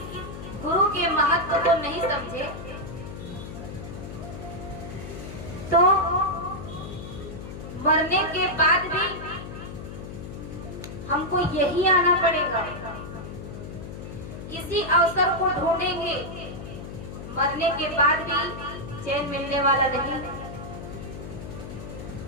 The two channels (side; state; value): left; noise; hum, 10 dB below the sound